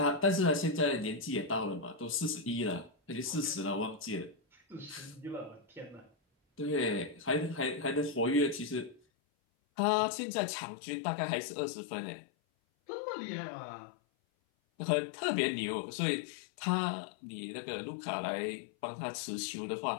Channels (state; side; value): drops out; right; at 9.0 s